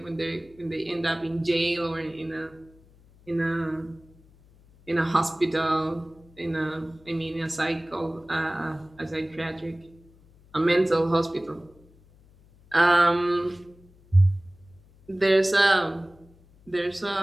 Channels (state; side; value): noise; left; hum, 27 dB below the sound